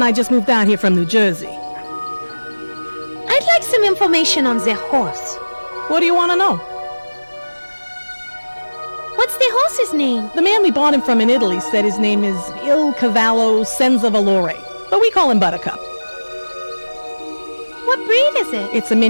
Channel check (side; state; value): both; inverted; correlation -1.00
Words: I just moved out here from New Jersey. I'd like some information on the horse. What do you want to know? What's the horse's name? The man we bought him from in Italy said his name is Il Cavallo Senza Valore, but we call him Buttercup. What breed is it? It's a